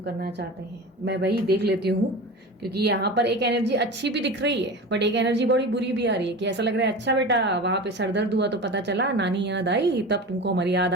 चाहते हैं। मैं वही देख लेती हूँ, क्योंकि यहाँ पर एक एनर्जी अच्छी भी दिख रही है, बट एक एनर्जी बड़ी बुरी भी आ रही है कि ऐसा लग रहा है अच्छा बेटा वहां पे सरदर्द हुआ तो पता चला नानी याद आई, तब तुमको हमारी याद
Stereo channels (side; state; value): both; normal; correlation 0.31